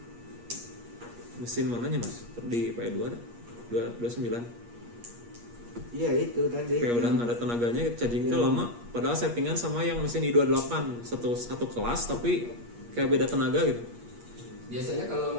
Mesin mananya Mas? Di PE2 ada? 29. Iya itu tadi. Kayak udah nggak ada tenaganya, chargingnya lama. Padahal settingan sama yang mesin i28 satu kelas tapi kayak beda tenaga gitu. Biasanya kalau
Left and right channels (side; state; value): left; late; 8.4 ms